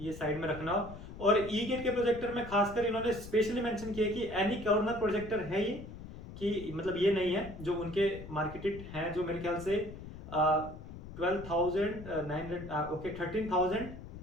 साइड में रखना हो। और ई गेट के प्रोजेक्टर में खासकर इन्होंने स्पेशली मेंशन किया कि एनी कॉर्नर प्रोजेक्टर है ये, कि मतलब ये नहीं है जो उनके मार्केटेड हैं, जो मेरे ख्याल से 12,900 ओके 13,000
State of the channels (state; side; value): noise; left; rumble, 12 dB below the sound